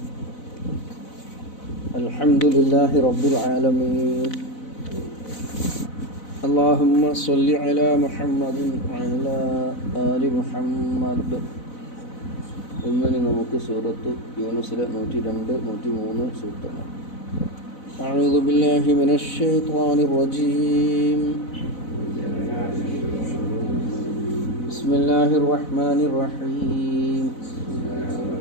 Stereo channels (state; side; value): late; right; 4.0 ms